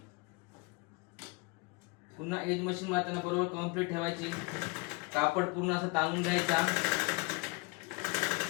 पुन्हा एज मशीन मारताना बरोबर कंप्लीट ठेवायची. कापड पूर्ण असं ताणून घ्यायचा.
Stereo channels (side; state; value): right; quieter; 29.1 dB